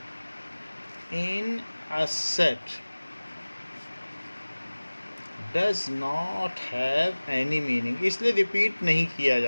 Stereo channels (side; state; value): both; inverted; correlation -1.00